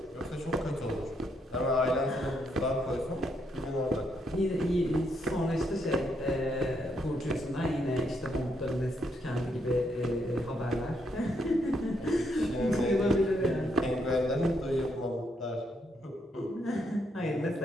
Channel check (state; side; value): normal; both; correlation 0.76